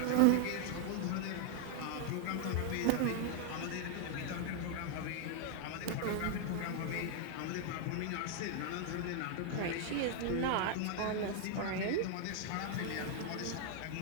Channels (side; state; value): both; different; correlation 0.00